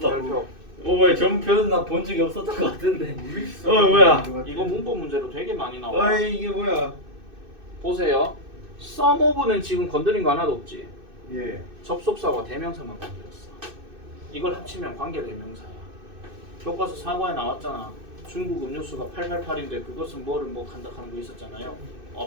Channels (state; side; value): late; left; 2.6 ms